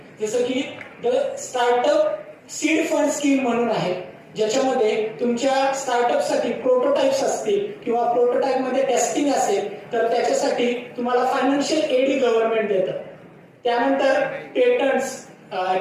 जसं की the startup seed fund scheme म्हणून आहे, ज्याच्यामध्ये तुमच्या स्टार्टअपसाठी प्रोटोटाइप्स असतील किंवा प्रोटोटाइप मध्ये टेस्टिंग असेल तर त्याच्यासाठी तुम्हाला फायनान्शियल एड गव्हर्नमेंट देतं. त्यानंतर पेटंट्स,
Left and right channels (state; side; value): identical; both; correlation 1.00